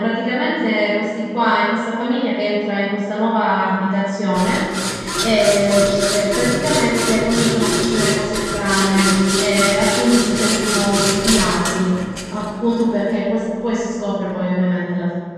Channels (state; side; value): identical; both; correlation 1.00